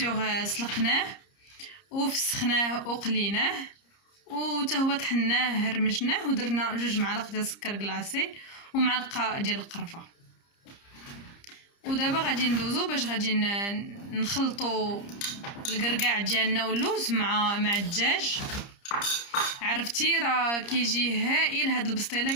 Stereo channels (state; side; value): late; right; 30 ms